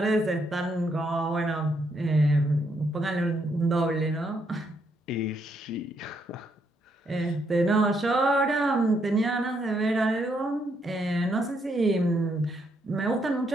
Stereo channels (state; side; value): normal; both; correlation 0.75